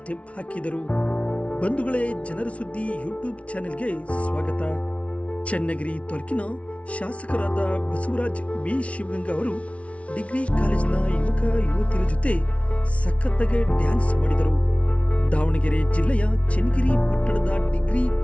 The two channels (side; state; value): right; late; 0.063 ms